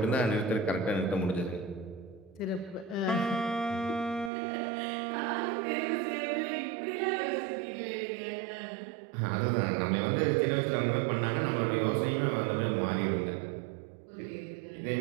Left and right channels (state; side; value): drops out; left; at 4.3 s